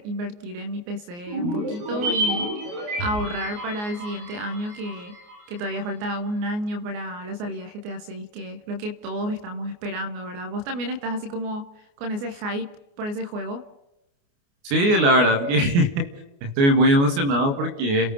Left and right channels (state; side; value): late; left; 29 ms